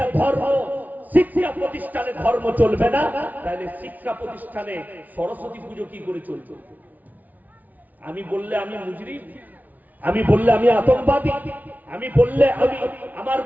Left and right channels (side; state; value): left; late; 0.077 ms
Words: ধর্ম, শিক্ষা প্রতিষ্ঠানে ধর্ম চলবে না, তাহলে শিক্ষা প্রতিষ্ঠানে সরস্বতী পুজো কি করে চলবে? আমি বললে আমি মুজরিম, আমি বললে আমি আতঙ্কবাদী, আমি বললে আমি আমার